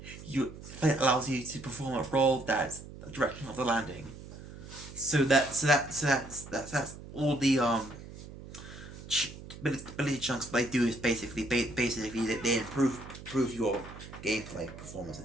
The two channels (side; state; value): right; noise; hum, 14 dB below the sound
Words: It allows you to perform a roll that's the direction of the landing. So that's all the ability chunks they do is basically they improve your gameplay performance,